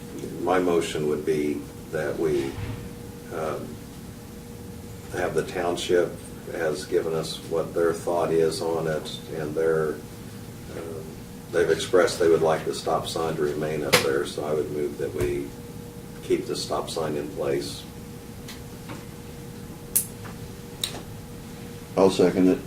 my motion would be that we have the township has given us what their thought is on it, and they've expressed they would like the stop sign to remain up there, so I would move that we keep the stop sign in place. I'll second it.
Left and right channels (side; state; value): both; identical; correlation 1.00